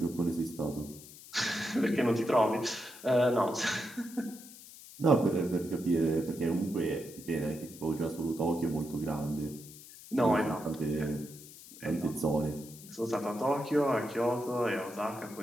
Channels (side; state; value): left; noise; hiss, 17 dB below the sound